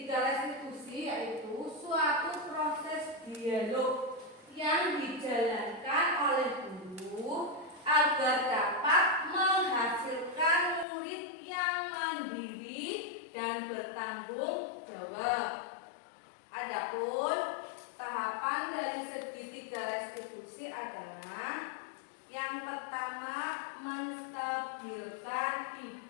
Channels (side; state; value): right; drops out; at 10.9 s